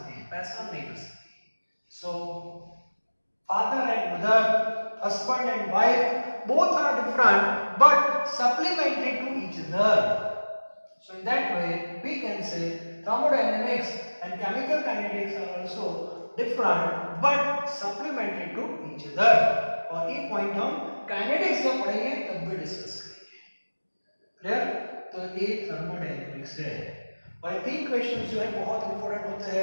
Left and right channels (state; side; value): inverted; both; correlation -1.00